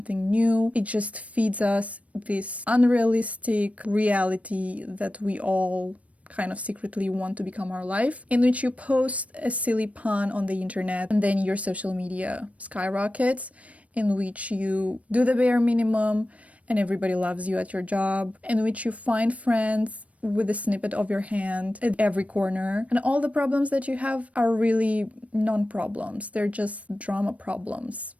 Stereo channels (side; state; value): left; late; 0.066 ms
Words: new. It just feeds us this unrealistic reality that we all kind of secretly want to become our life, in which you post a silly pun on the internet and then your social media skyrockets, in which you do the bare minimum and everybody loves you at your job, in which you find friends with a snippet of your hand at every corner. And all the problems that you have are really non-problems. They're just drama problems.